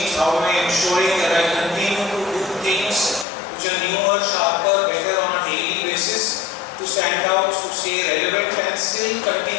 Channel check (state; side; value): drops out; right; at 3.2 s